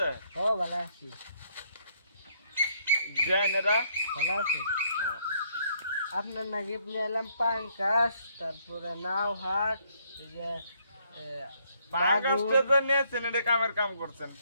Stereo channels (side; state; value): both; inverted; correlation -0.69